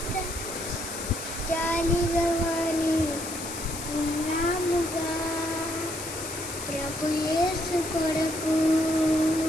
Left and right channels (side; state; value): left; noise; hiss, 8 dB below the sound